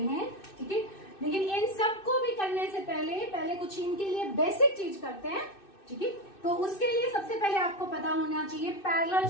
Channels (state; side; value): late; right; 2.6 ms